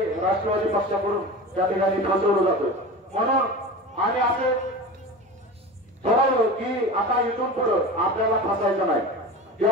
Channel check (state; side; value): normal; both; correlation 0.31